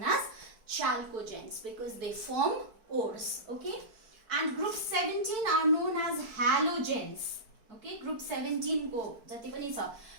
as chalcogens, because they form ores. Okay, and group 17 are known as halogens. Okay, group 17 को जति पनि छ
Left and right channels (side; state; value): left; late; 4.5 ms